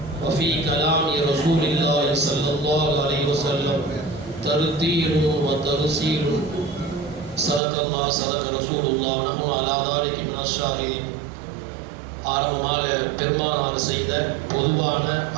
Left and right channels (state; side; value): drops out; left; at 7.6 s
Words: وفي كلام رسول الله صلى الله عليه وسلم ترتيل وترسيل. صدق الله صدق رسول الله ونحن على ذلك من الشاهدين. ஆரம்பமாக பெருமானார் செய்த பொதுவான